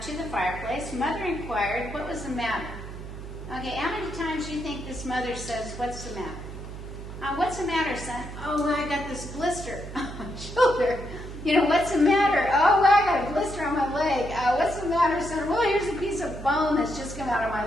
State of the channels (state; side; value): noise; right; hum, 11 dB below the sound